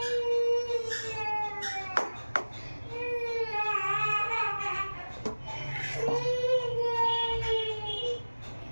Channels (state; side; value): inverted; both; correlation -1.00